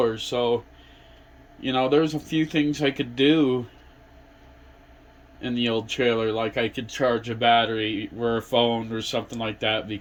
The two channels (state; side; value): identical; both; correlation 1.00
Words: so there's a few things I could do in the old trailer, like I could charge a battery or a phone or something like that